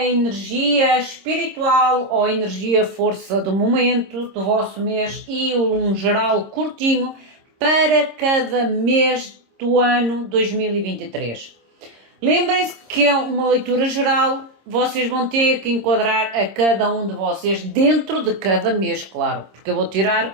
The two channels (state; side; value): late; left; 26 ms